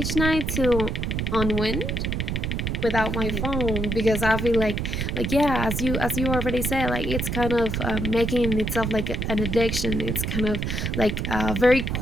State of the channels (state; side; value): noise; right; rumble, 1 dB below the sound